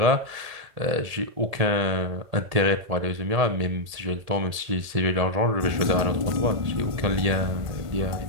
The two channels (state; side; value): late; left; 1.8 ms